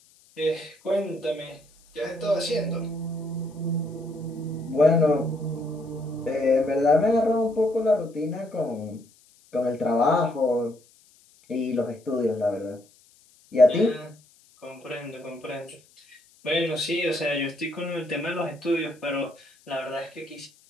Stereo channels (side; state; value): left; noise; hiss, 30 dB below the sound